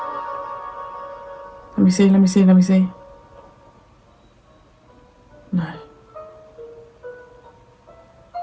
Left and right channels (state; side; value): identical; both; correlation 1.00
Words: Let me see, let me see, let me see. No.